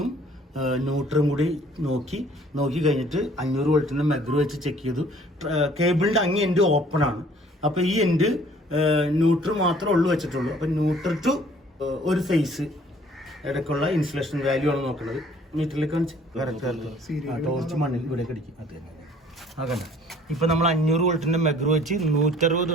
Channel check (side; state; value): both; normal; correlation 0.56